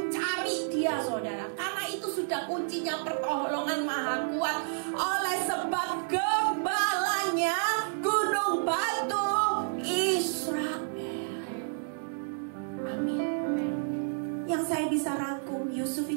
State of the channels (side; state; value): left; silent; digital silence